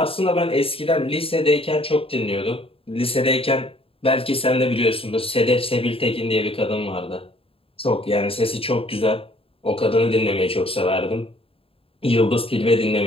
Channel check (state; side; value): late; right; 0.27 ms